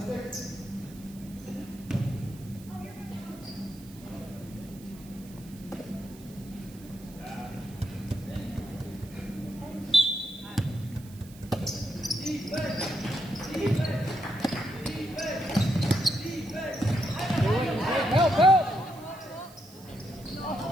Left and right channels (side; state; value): right; noise; hiss, 21 dB below the sound